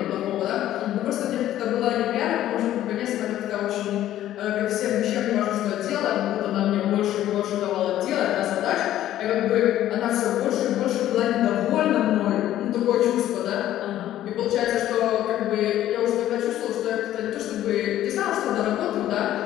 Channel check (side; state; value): right; quieter; 12.8 dB